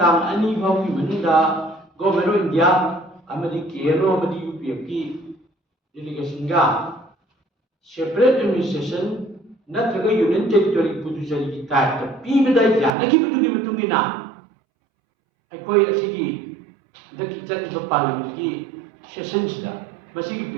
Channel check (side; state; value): left; drops out; at 12.9 s